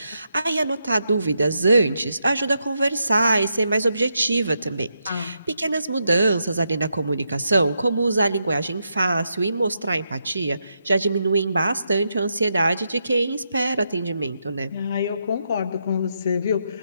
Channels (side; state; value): both; inverted; correlation -0.82